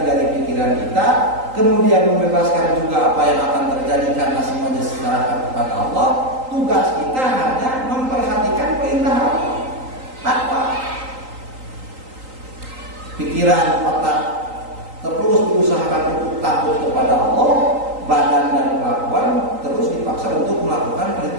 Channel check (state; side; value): late; left; 3.9 ms